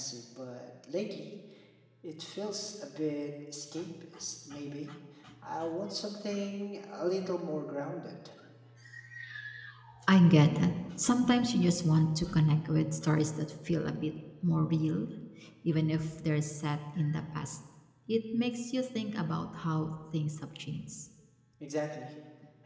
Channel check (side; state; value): both; identical; correlation 1.00